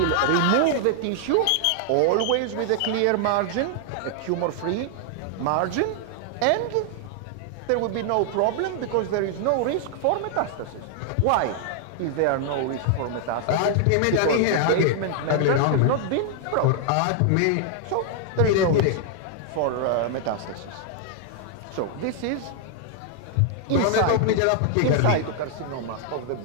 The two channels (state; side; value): different; both; correlation 0.00